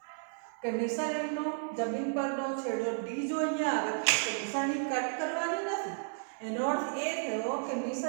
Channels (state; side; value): silent; left; 56 dB below the other